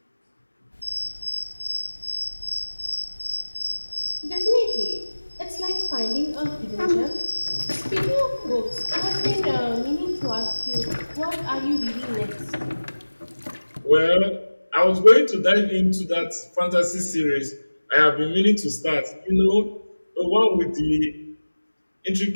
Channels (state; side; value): inverted; both; correlation -1.00